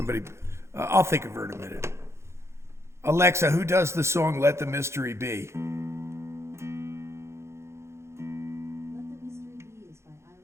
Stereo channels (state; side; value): late; left; 0.13 ms